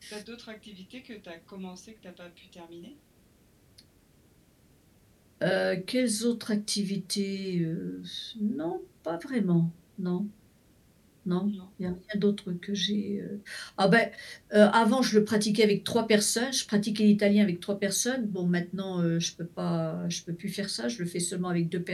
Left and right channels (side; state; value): both; identical; correlation 1.00